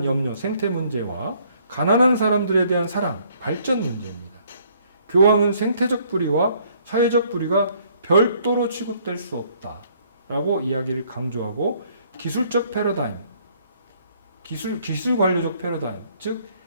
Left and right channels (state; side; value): inverted; both; correlation -0.63